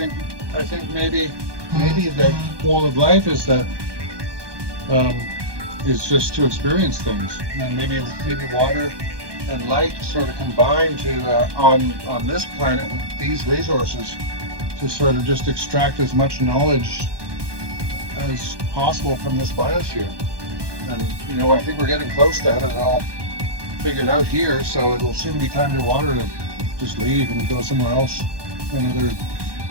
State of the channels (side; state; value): left; late; 1.2 ms